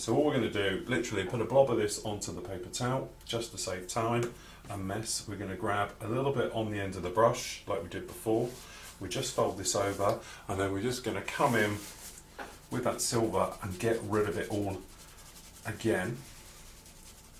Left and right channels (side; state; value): both; identical; correlation 1.00